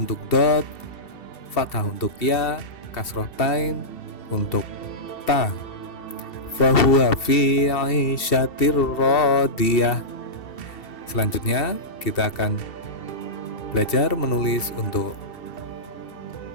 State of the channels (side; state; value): right; late; 2.7 ms